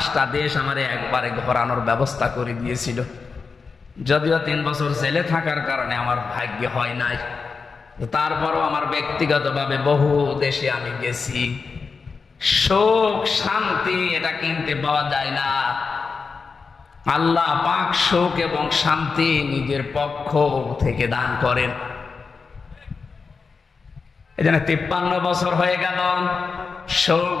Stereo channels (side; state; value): right; quieter; 4.9 dB